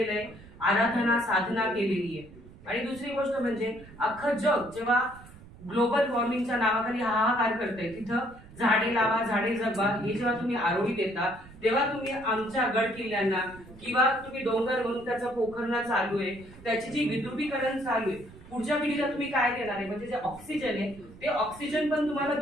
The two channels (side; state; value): right; noise; rumble, 20 dB below the sound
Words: आहे, आराधना साधना केलेली आहे। आणि दुसरी गोष्ट म्हणजे अख्खं जग जेव्हा ग्लोबल वॉर्मिंगच्या नावाखाली हाहाकार करते, तिथं झाडे लावा झाडे जगवा हे जेव्हा तुम्ही आरोळी देता, तेव्हा तुम्ही आमच्या गड किल्ल्यांना किंवा तुम्ही डोंगर म्हणून त्याचं पोखरणं चालू आहे, त्याची जी विद्रुपीकरण चालू आहे, पुढच्या पिढीला तुम्ही काय देणार आहे? म्हणजे जे ऑक्सिजन आहे ते ऑक्सिजन पण तुम्हाला